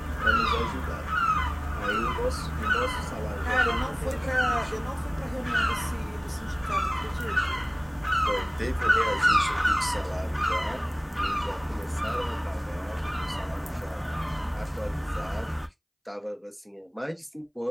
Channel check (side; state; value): both; identical; correlation 1.00